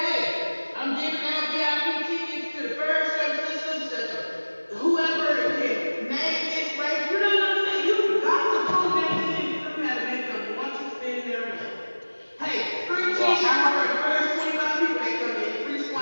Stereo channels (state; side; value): inverted; both; correlation -1.00